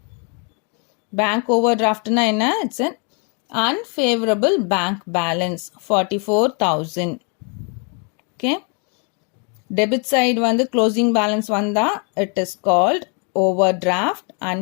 Bank overdraftனா என்ன? It's an unfavorable bank balance, 44,000. Okay, debit side வந்து closing balance வந்தா it is called overdraft,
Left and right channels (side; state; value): right; quieter; 37.2 dB